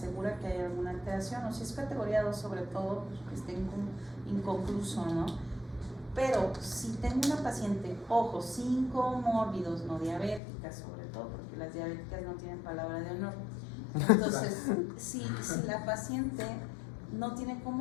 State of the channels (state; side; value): drops out; right; at 10.4 s